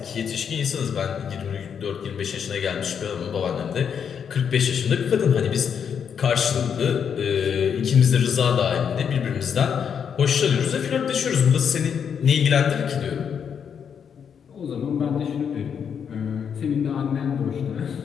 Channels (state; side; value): quieter; right; 7.5 dB